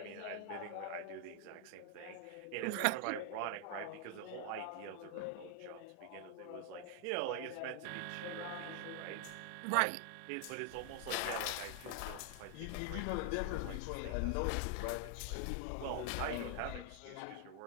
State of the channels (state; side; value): different; both; correlation 0.00